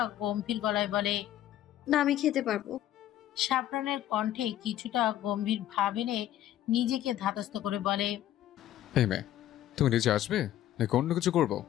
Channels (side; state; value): right; quieter; 12.5 dB